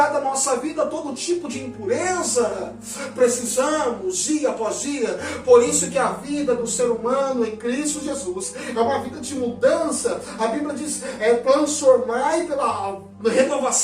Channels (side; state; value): both; identical; correlation 1.00